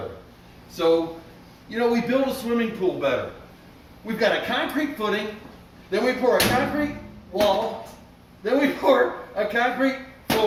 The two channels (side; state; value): both; identical; correlation 1.00